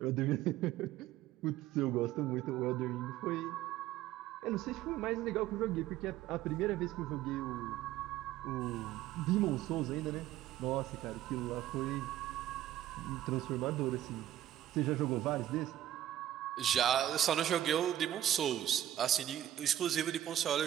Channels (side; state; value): left; quieter; 12.6 dB